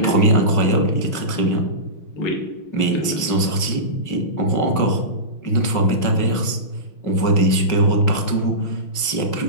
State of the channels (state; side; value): late; right; 5.5 ms